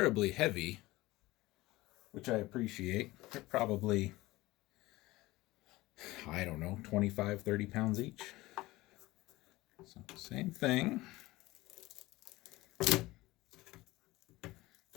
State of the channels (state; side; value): quieter; right; 19.2 dB